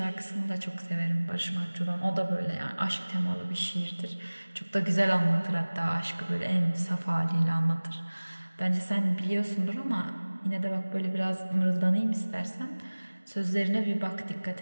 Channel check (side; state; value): both; inverted; correlation -1.00